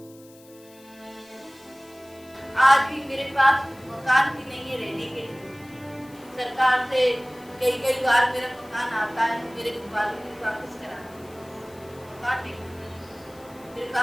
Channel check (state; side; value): noise; left; hiss, 25 dB below the sound